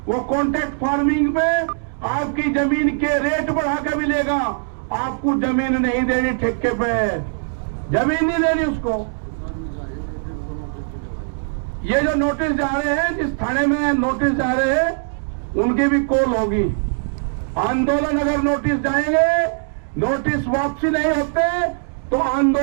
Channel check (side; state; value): left; silent; digital silence